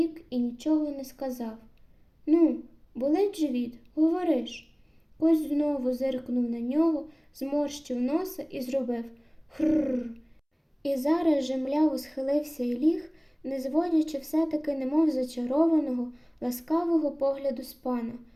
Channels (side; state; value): both; identical; correlation 1.00